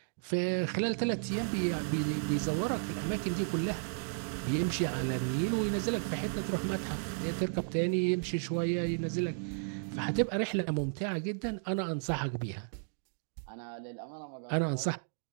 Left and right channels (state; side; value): silent; left; digital silence